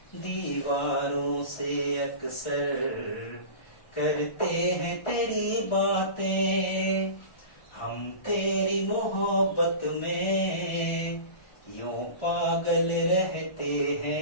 दीवारों से अक्सर करते हैं तेरी बातें, हम तेरी मोहब्बत में यूं पागल रहते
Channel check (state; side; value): late; right; 1.3 ms